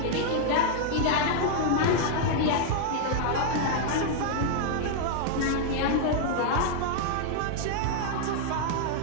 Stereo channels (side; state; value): both; different; correlation -0.01